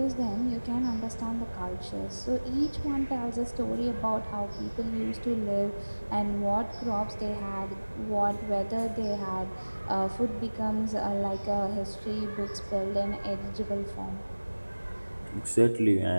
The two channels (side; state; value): both; inverted; correlation -1.00